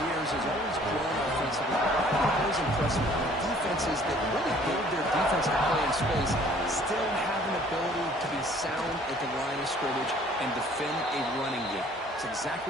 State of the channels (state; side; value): normal; both; correlation 0.56